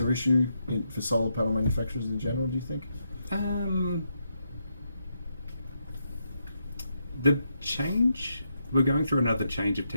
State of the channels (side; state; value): both; inverted; correlation -0.81